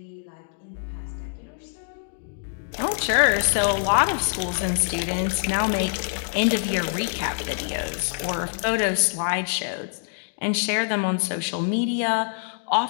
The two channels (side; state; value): right; silent; digital silence